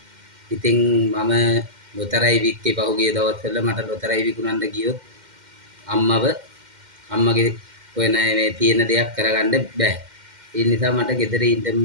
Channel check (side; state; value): left; late; 2.1 ms